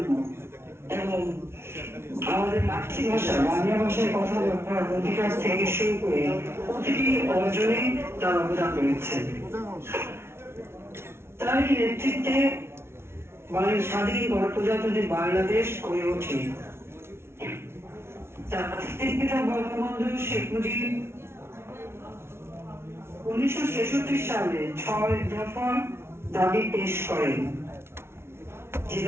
এবং আমাদের মাতৃভাষা বাংলা ভাষায় কথা বলার অধিকার থেকে শুরু করে প্রতিটি অর্জনে তার অবদান রয়েছে। তার নেতৃত্বে স্বাধীন গণপ্রজাতন্ত্রী বাংলাদেশ গড়ে ওঠে। জাতির পিতা বঙ্গবন্ধু শেখ মুজিব 1966 সালে 6 দফা দাবি পেশ করেন, যে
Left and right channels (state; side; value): late; left; 0.12 ms